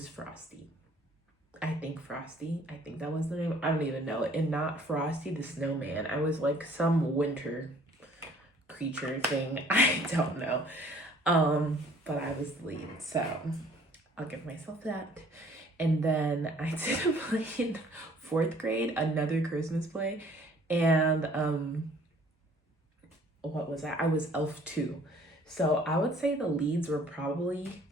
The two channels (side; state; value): both; normal; correlation 0.56